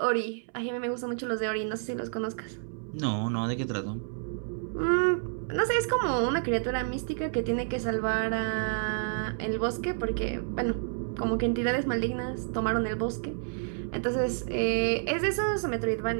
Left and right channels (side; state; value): left; silent; 58 dB below the other